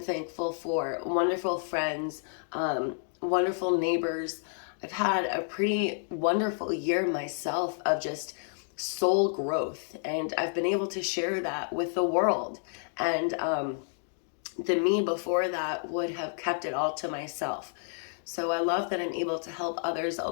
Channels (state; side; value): silent; right; 58 dB below the other